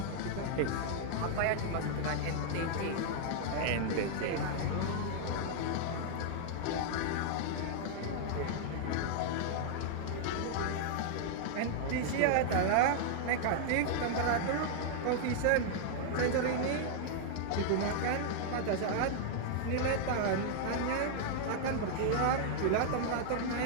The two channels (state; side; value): different; both; correlation -0.01